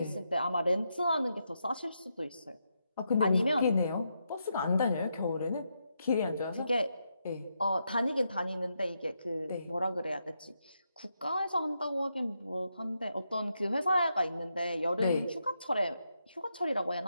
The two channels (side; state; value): both; inverted; correlation -0.83